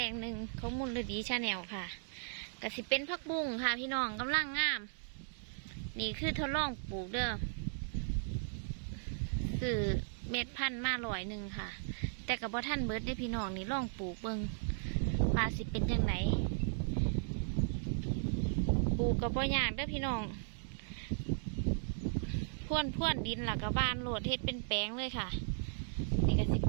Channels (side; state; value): left; silent; digital silence